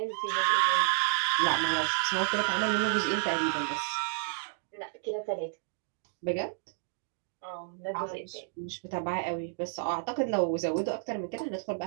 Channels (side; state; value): left; silent; digital silence